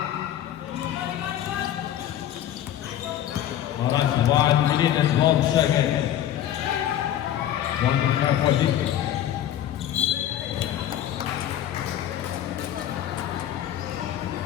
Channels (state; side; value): quieter; right; 11.3 dB